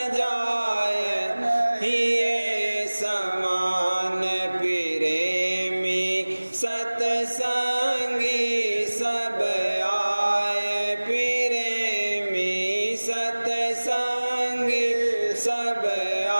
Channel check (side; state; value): both; inverted; correlation -1.00